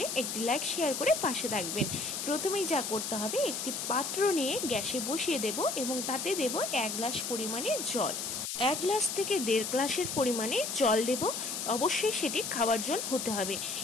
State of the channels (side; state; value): left; noise; hiss, 3 dB below the sound